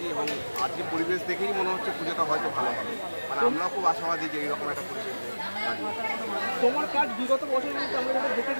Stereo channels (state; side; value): inverted; both; correlation -1.00